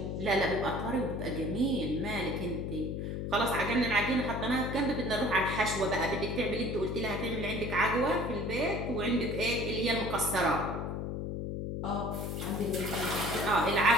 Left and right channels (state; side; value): noise; left; hum, 3 dB below the sound